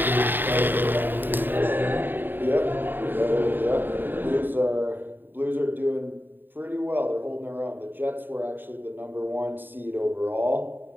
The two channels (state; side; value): late; left; 0.093 ms